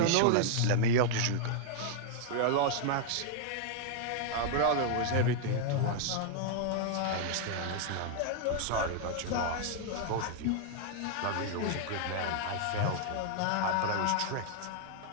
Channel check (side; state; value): both; different; correlation 0.00